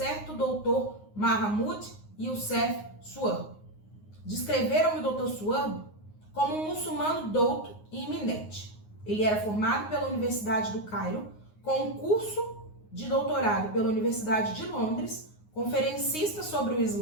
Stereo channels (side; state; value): right; late; 9.6 ms